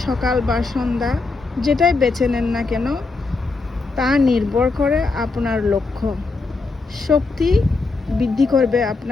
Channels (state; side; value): quieter; right; 3.8 dB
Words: সকাল বা সন্ধ্যা যেটাই বেছে নেন না কেন, তা নির্ভর করে আপনার লক্ষ্য। শক্তি বৃদ্ধি করবে